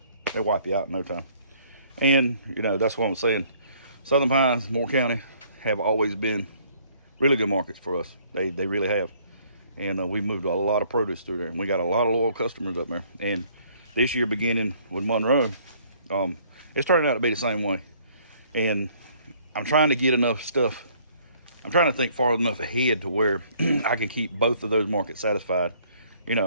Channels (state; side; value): inverted; both; correlation -0.61